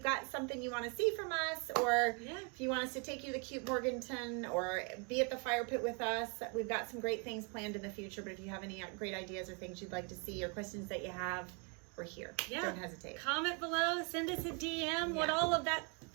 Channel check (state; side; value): quieter; left; 35.2 dB